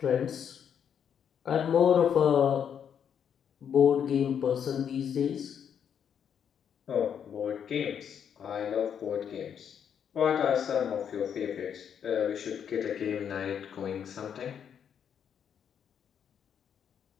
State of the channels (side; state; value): right; quieter; 8.2 dB